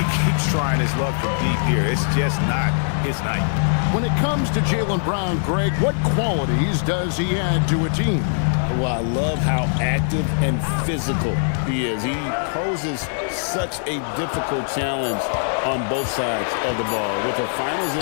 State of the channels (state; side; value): silent; right; digital silence